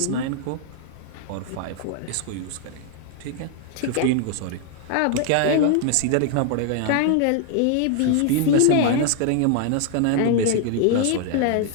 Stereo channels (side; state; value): both; different; correlation 0.00